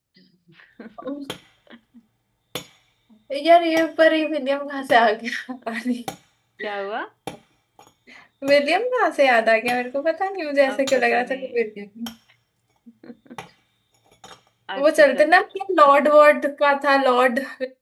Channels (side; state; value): both; identical; correlation 1.00